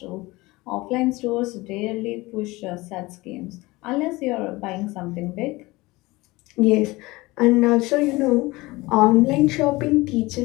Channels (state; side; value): quieter; right; 21.3 dB